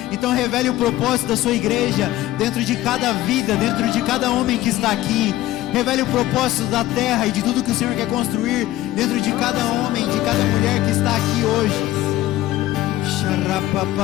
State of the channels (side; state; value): right; quieter; 15.5 dB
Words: Então revele o propósito da sua igreja dentro de cada vida, dentro de cada homem que está aqui. Revele o propósito da terra e de tudo que o Senhor quer construir dentro de cada homem, de cada mulher que está aqui hoje.